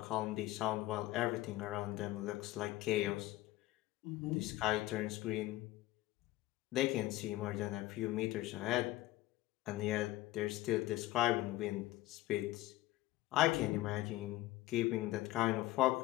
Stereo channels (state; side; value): quieter; right; 17.0 dB